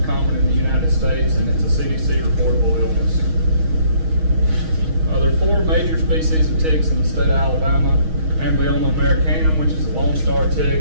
common in the United States, and it's a CDC reportable illness. There are 4 major species of ticks in the state of Alabama. Amblyoma americanum, which is the lone star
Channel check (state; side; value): late; left; 6.3 ms